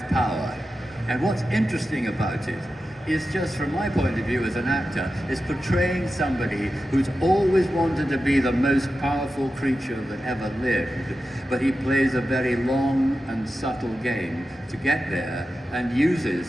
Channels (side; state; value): both; normal; correlation 0.92